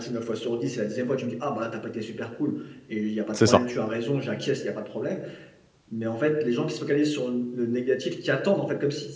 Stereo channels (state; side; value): identical; both; correlation 1.00